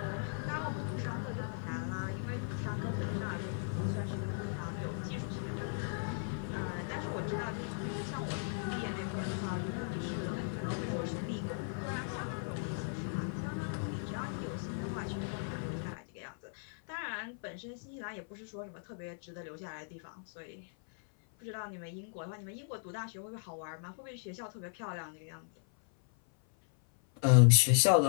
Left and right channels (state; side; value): silent; right; 53 dB below the other